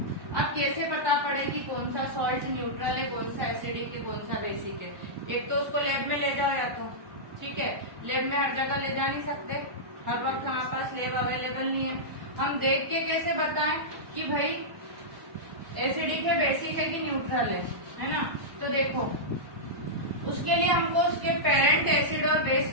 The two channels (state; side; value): late; left; 1.0 ms